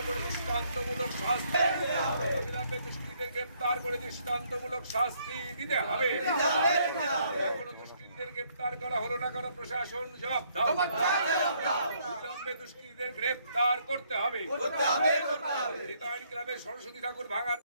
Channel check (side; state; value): both; inverted; correlation -0.69